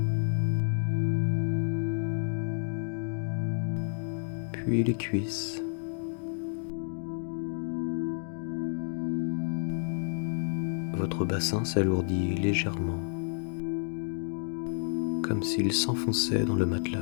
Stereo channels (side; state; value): right; silent; digital silence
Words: puis les cuisses. Votre bassin s'alourdit légèrement, comme s'il s'enfonçait dans le